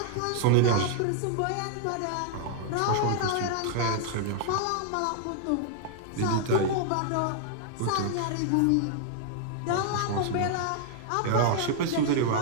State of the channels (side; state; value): both; different; correlation 0.00